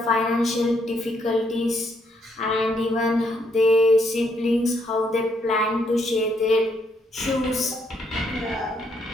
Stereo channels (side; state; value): both; normal; correlation 0.73